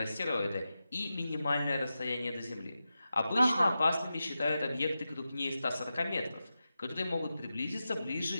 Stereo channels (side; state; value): both; inverted; correlation -0.91